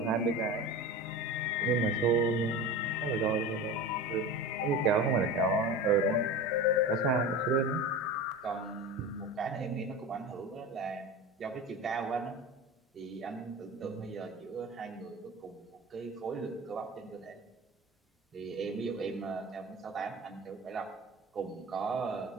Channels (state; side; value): normal; both; correlation 0.30